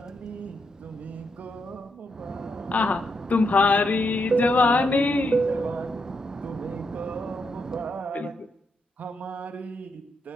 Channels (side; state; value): both; normal; correlation 0.80